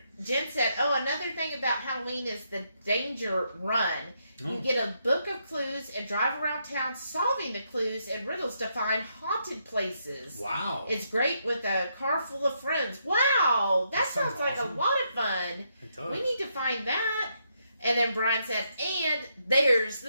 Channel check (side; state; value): both; inverted; correlation -0.78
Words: Jen said, oh, another thing about Halloween is the danger run. Oh. You get a book of clues and drive around town solving the clues and riddles to find haunted places. Wow. It's great with a car full of friends. Wow. That sounds like awesome. A lot of fun. It does. We need to find that. And then Brian said, and there's